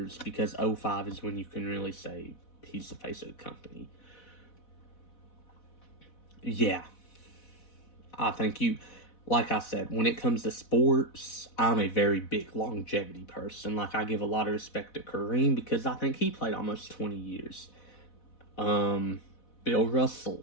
because 05 is when you can really say he's the face of the company. Yeah. I think like I said, when it comes to sports, I'm a very big longevity person. Like, I give a lot of respect to Kareem because I think he played almost 20 years. Bill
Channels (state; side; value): late; right; 4.1 ms